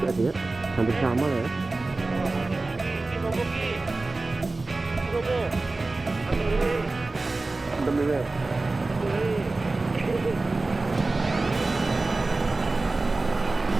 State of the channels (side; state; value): left; quieter; 3.3 dB